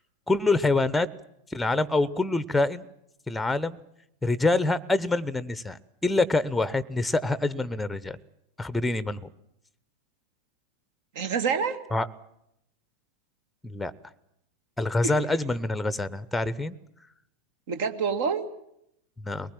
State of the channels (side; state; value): both; normal; correlation 0.74